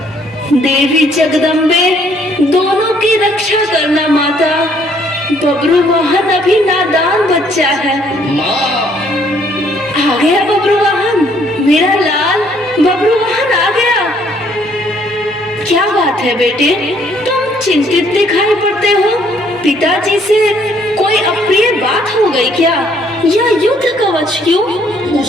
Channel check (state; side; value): normal; both; correlation 0.65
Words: देवी जगदम्बे, दोनों की रक्षा करना माता। बब्रुवाहन अभी नादान बच्चा है। माँ, आ गया बब्रुवाहन, मेरा लाल बब्रुवाहन आ गया। क्या बात है बेटे, तुम चिंतित दिखाई पड़ते हो। पिताजी से कोई अप्रिय बात हो गई क्या? या युद्ध कवच क्यों?